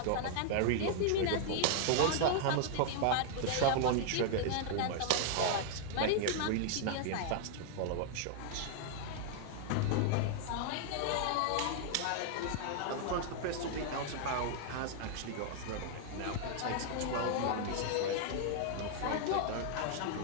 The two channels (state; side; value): different; both; correlation 0.00